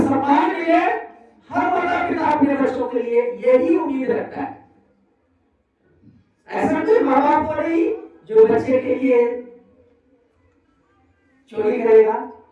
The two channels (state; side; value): identical; both; correlation 1.00